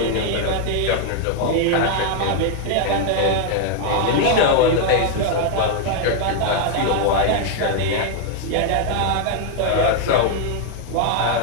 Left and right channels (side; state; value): both; different; correlation 0.00